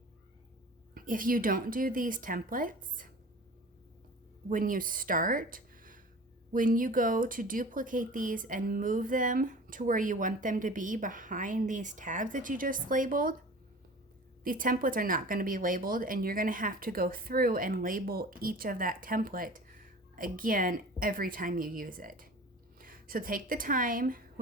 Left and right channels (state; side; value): normal; both; correlation 0.40